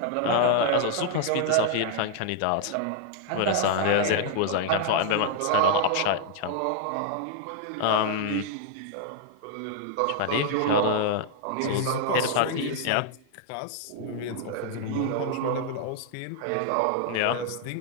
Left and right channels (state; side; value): different; both; correlation 0.00